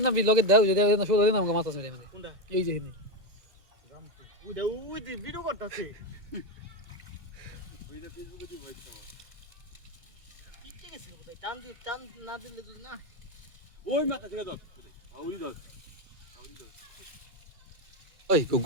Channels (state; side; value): late; left; 1.9 ms